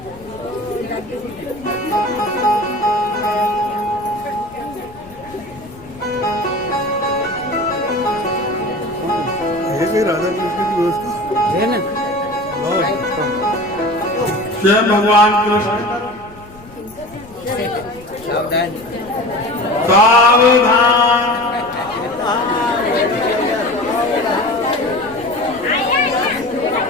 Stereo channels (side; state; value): left; noise; rumble, 22 dB below the sound